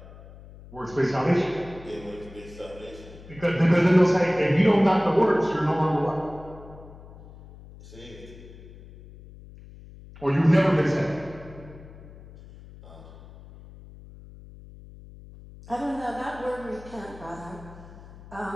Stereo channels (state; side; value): noise; left; hum, 19 dB below the sound